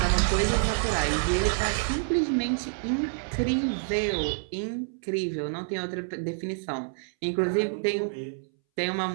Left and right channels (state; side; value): silent; left; 60 dB below the other